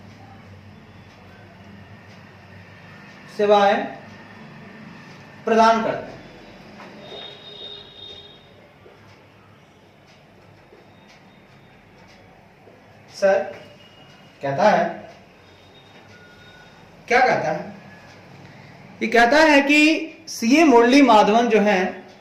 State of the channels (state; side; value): identical; both; correlation 1.00